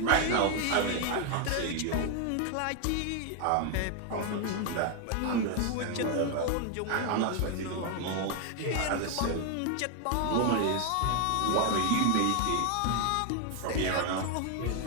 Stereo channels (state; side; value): different; both; correlation 0.01